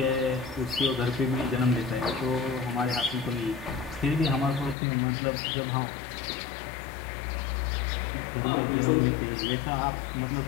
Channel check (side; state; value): right; drops out; at 4.8 s